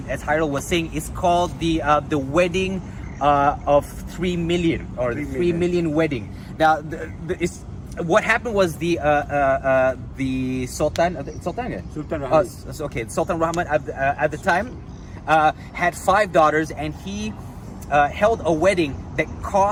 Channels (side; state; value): both; identical; correlation 1.00